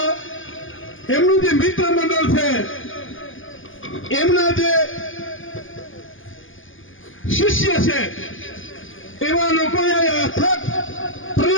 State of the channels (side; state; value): right; late; 0.58 ms